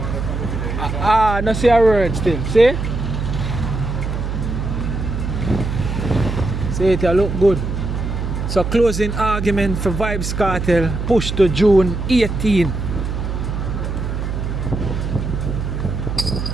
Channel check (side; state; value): right; noise; hum, 3 dB below the sound